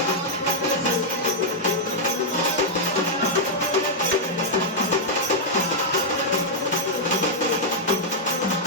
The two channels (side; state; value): both; normal; correlation -0.05